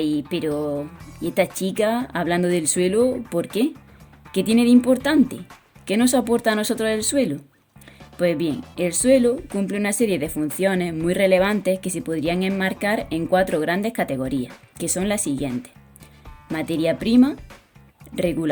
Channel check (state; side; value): identical; both; correlation 1.00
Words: pero ¿y esta chica hablando del suelo, por qué? ¿Qué tiene de importante? ¿Qué nos aporta a nosotros el suelo? Pues bien, el suelo cumple una serie de funciones muy relevantes que se podrían enmarcar en 4 grandes categorías, que son las siguientes: materia prima,